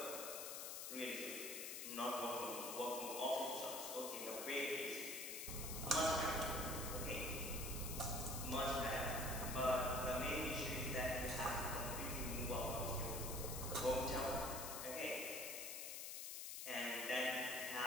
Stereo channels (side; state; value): left; noise; hiss, 5 dB below the sound